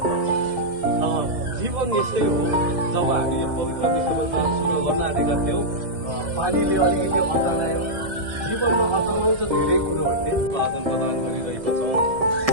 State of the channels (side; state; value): left; late; 1.5 ms